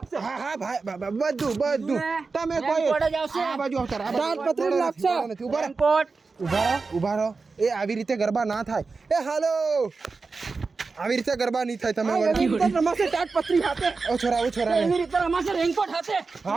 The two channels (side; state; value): left; quieter; 4.3 dB